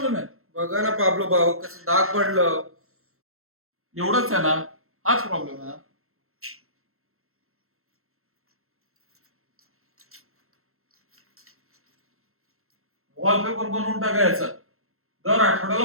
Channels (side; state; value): left; late; 0.62 ms